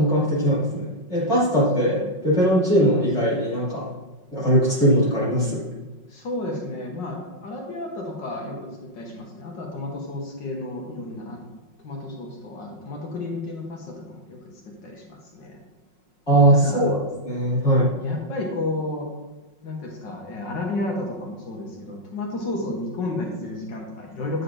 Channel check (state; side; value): late; right; 5.5 ms